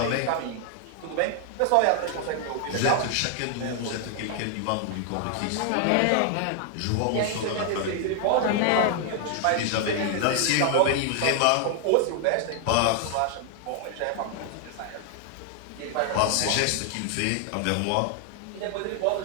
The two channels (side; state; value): both; different; correlation 0.00